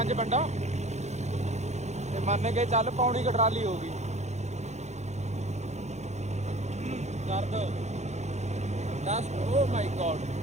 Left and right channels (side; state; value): left; late; 0.33 ms